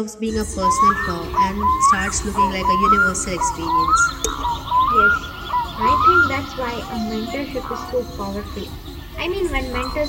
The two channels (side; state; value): both; identical; correlation 1.00